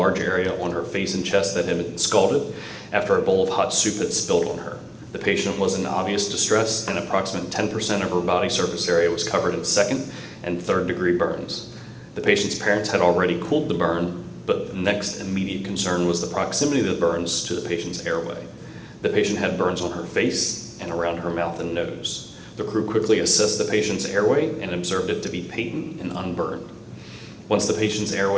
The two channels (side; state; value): both; identical; correlation 1.00